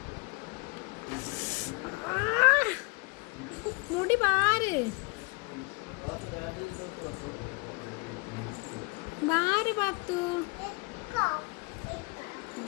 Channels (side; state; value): right; quieter; 30.3 dB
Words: മുടി പാര് പാത്തു.